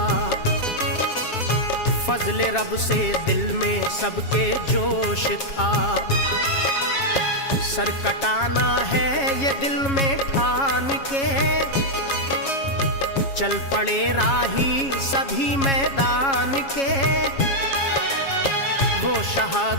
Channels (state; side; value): late; right; 7.3 ms